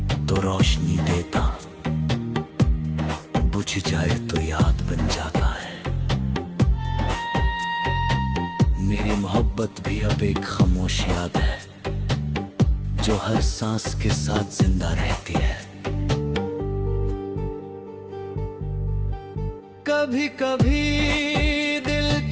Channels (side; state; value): both; identical; correlation 1.00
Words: तो रोशनी देता, बुझ जाए तो याद बन जाता है। मेरी मोहब्बत भी अब एक खामोश याद है जो हर सांस के साथ जिंदा रहती है। कभी कभी दिल